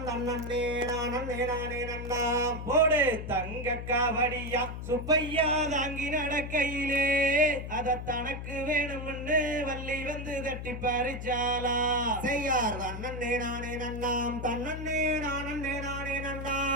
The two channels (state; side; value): noise; left; hum, 7 dB below the sound